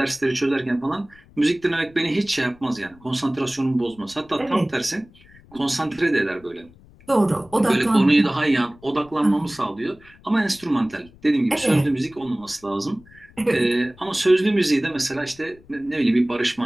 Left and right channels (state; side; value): noise; left; rumble, 26 dB below the sound